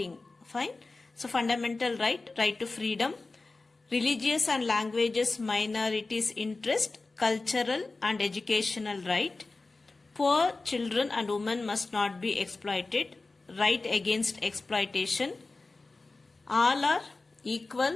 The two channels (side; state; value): right; quieter; 3.5 dB